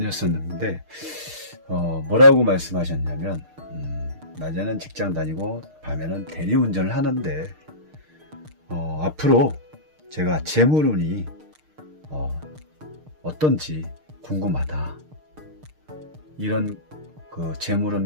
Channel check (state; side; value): late; left; 6.5 ms